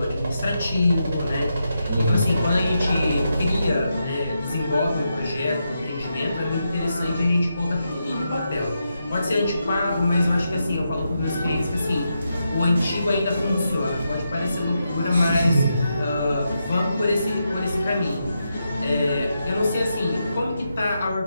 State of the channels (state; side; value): inverted; both; correlation -0.85